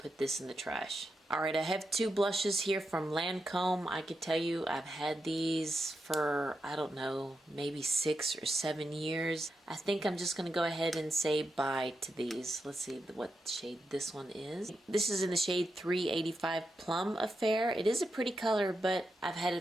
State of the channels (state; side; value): normal; both; correlation 0.87